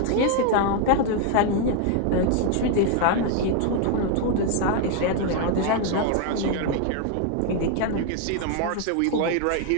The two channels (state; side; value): different; both; correlation 0.00